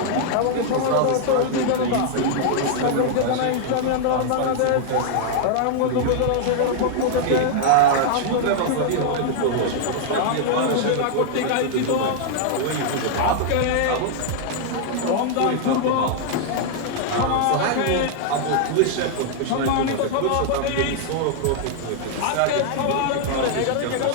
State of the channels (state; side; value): different; both; correlation -0.01